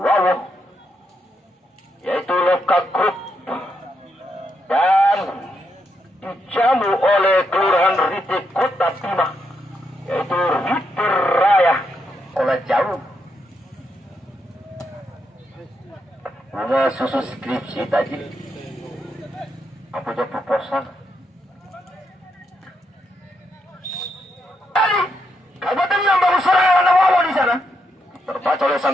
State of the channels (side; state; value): both; normal; correlation 0.80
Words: yaitu Loka Group, dan dijamu oleh Kelurahan Rite Kota Bima, yaitu Rite Raya. Oleh jauh bunga susu skripsi tadi apa aja proposal. Kabupaten yang baru serangan Wawo di sana. Terbaca oleh